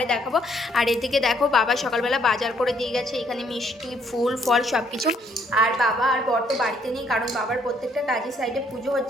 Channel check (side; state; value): both; normal; correlation 0.68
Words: দেখাবো। আর এদিকে দেখো বাবা সকালবেলা বাজার করে দিয়ে গেছে, এখানে মিষ্টি ফুল ফল সব কিছু। আর বাবা আর বর তো বাড়িতে নেই, কারণ বাবার প্রত্যেকটা কাজের সাইডে পুজো